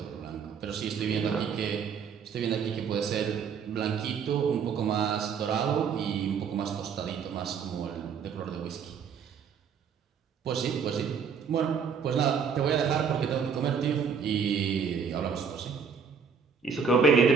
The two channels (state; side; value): quieter; left; 6.5 dB